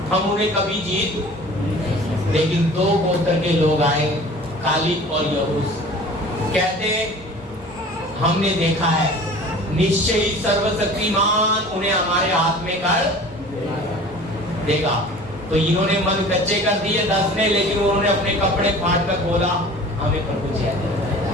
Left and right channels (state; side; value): normal; both; correlation 0.43